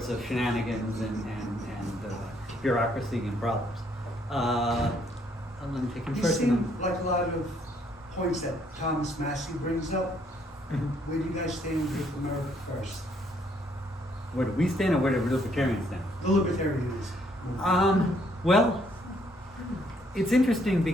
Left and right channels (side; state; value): both; normal; correlation 0.68